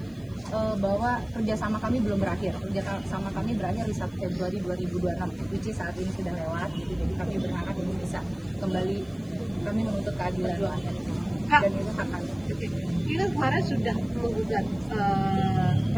bahwa kerjasama kami belum berakhir. Kerjasama kami berakhir di 1 Februari 2026, which is saat ini sudah lewat gitu. Jadi kami berharap ini bisa kembali, kami menuntut keadilan dan itu hak kami. Kita kemarin sudah menggugat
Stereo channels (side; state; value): left; noise; hiss, 30 dB below the sound